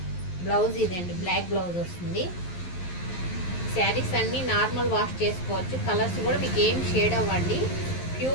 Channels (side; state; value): right; late; 11 ms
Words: బ్లౌజ్ ఇదండి, బ్లాక్ బ్లౌజ్ వస్తుంది. శారీస్ అన్నీ నార్మల్ వాష్ చేసుకోవచ్చు, కలర్స్ కూడా మీకు ఏం షేడ్ అవ్వండి.